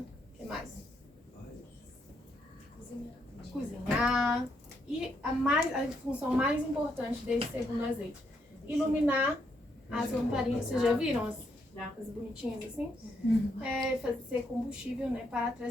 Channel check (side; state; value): both; normal; correlation 0.76